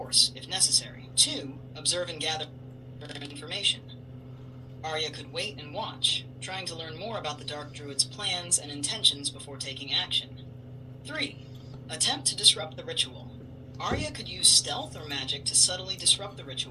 if necessary. 2. Observe and gather information. Arya could wait and watch, trying to learn more about the Dark Druid's plans and intentions before taking action. 3. Attempt to disrupt the ritual. Arya could use stealth or magic to subtly disrupt the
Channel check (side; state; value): both; identical; correlation 1.00